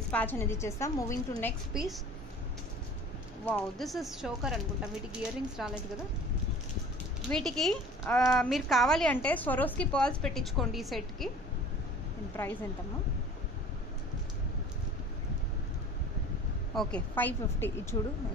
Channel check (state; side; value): normal; both; correlation 0.45